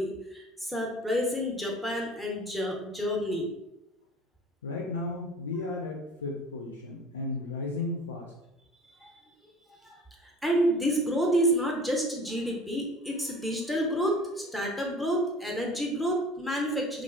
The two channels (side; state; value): both; normal; correlation 0.44